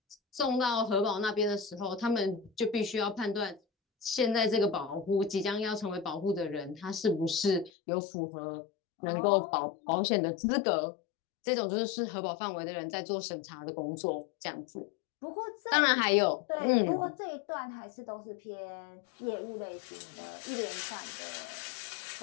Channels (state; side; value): drops out; right; at 7.7 s